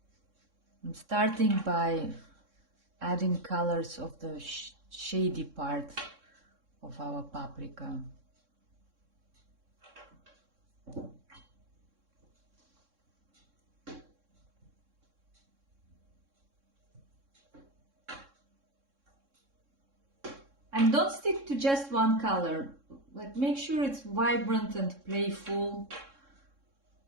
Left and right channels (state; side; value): late; left; 3.6 ms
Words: I'm starting by adding colors of the shady part of our paprika. And don't stick to just one color. Like, make sure it's vibrant and playful.